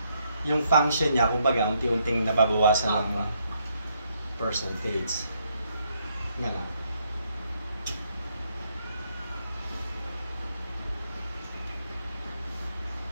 Yung function niya, kumbaga, unti-unting nababawasan ng percentage. Nga nga.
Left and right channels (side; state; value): both; inverted; correlation -0.74